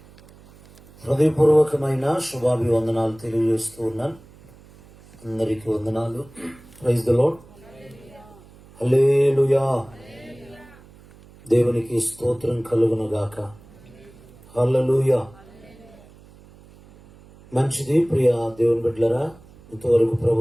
హృదయపూర్వకమైన శుభాభివందనాలు తెలియజేస్తూ ఉన్నాను. అందరికీ వందనాలు. Praise the Lord. హల్లెలూయా. దేవునికి స్తోత్రం కలుగును గాక. హల్లెలూయా. మంచిది ప్రియ దేవుని బిడ్డలారా, ఇంతవరకు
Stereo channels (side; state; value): right; noise; hum, 24 dB below the sound